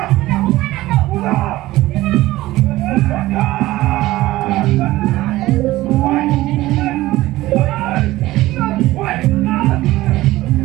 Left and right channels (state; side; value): quieter; left; 17.1 dB